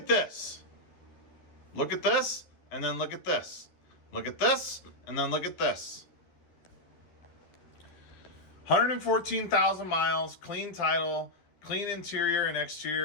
this. Look at this, and then look at this. Look at this, and then look at this. 114,000 miles, clean title, clean interior and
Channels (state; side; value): late; right; 12 ms